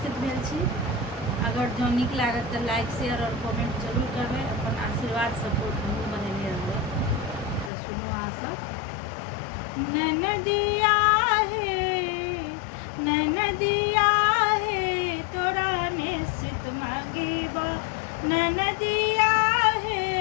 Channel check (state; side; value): drops out; right; at 7.7 s